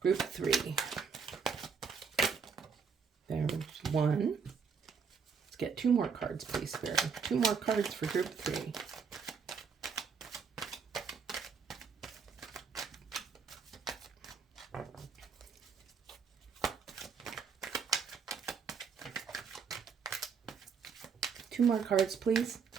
3. There's one. Let's get 2 more cards, please, Spirit. 2 more cards for group 3. Two more cards, please.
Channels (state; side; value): quieter; left; 5.9 dB